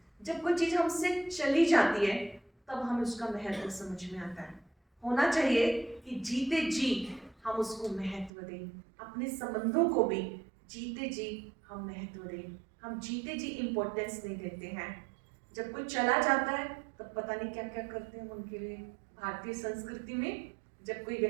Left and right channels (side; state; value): left; drops out; at 8.3 s